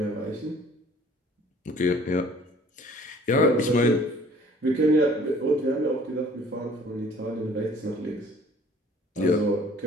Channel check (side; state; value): both; normal; correlation 0.53